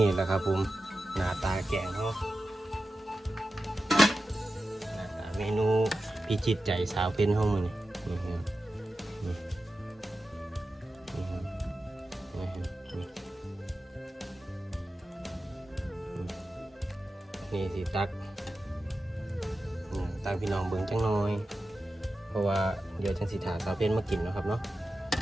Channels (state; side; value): normal; both; correlation 0.92